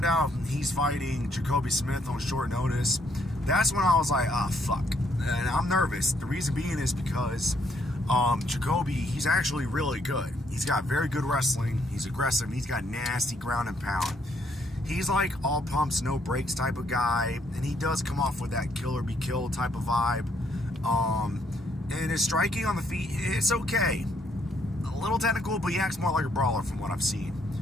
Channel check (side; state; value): both; normal; correlation 0.70